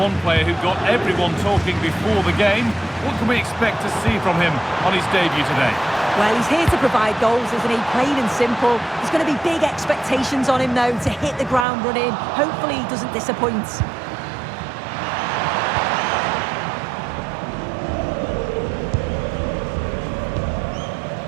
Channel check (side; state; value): left; drops out; at 11.7 s